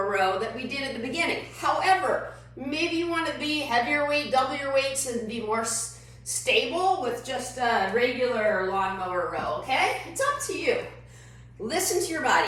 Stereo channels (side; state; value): both; identical; correlation 1.00